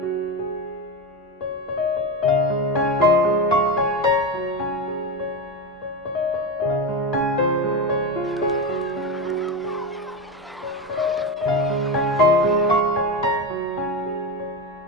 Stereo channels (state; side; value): normal; both; correlation 0.18